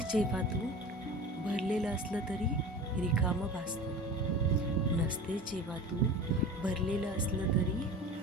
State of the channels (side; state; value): both; normal; correlation 0.35